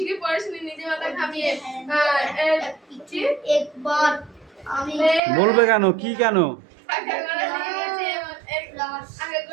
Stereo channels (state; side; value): drops out; left; at 5.2 s